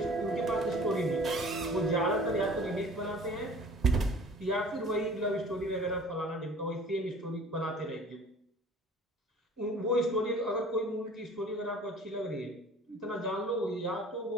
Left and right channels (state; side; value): normal; both; correlation 0.47